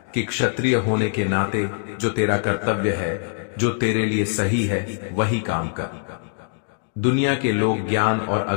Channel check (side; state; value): right; silent; digital silence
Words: कि क्षत्रिय होने के नाते जो तेरा कर्तव्य है, जो तेरे लिए सही है, वही काम कर। दुनिया के लोग ज्ञान और